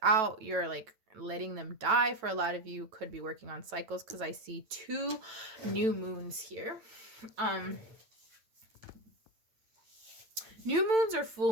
out. You're like letting them die. For a lot of you could be working on cycles, because I see 2 new moons here. New moons or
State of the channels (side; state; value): left; late; 9.1 ms